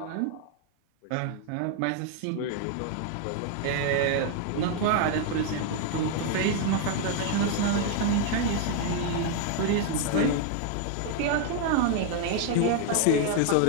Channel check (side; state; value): both; different; correlation 0.00